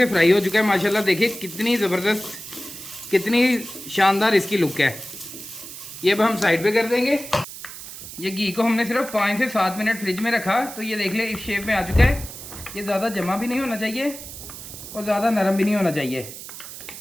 फ्राई हो चुका है माशाल्लाह। देखिए कितनी ज़बरदस्त, कितनी शानदार इसकी लुक है। ये अब हम साइड पे कर देंगे। ये घी को हमने सिर्फ 5 से 7 मिनट फ्रिज में रखा, तो ये देख ले इस शेप में आ चुका है। ये ज़्यादा जमा भी नहीं होना चाहिए और ज़्यादा नरम भी नहीं होना चाहिए।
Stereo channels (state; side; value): noise; right; hiss, 12 dB below the sound